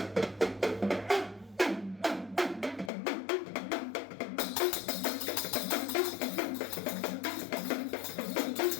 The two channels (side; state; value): right; drops out; at 2.9 s